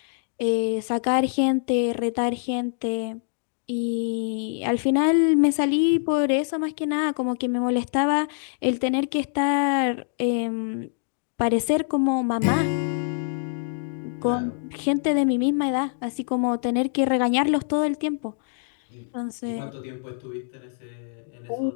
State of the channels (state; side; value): silent; right; digital silence